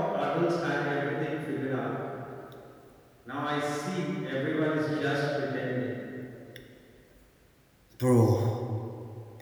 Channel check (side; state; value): both; identical; correlation 1.00